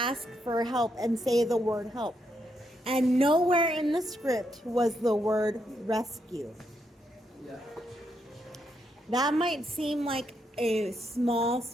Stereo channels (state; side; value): normal; both; correlation 0.79